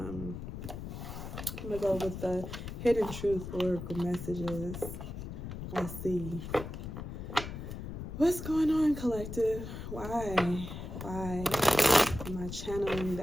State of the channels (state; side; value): noise; left; rumble, 8 dB below the sound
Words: gonna go with the hidden truth oracle messages. Let's see what's going on, collective. Why am I channeling